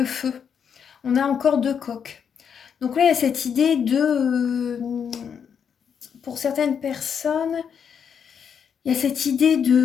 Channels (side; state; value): right; quieter; 7.4 dB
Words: feu. On a encore deux coqs. Donc là, il y a cette idée pour certaines personnes, il y a cette idée